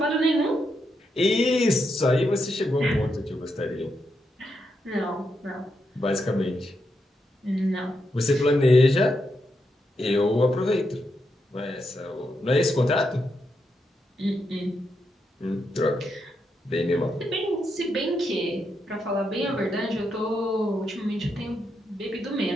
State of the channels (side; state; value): both; normal; correlation 0.82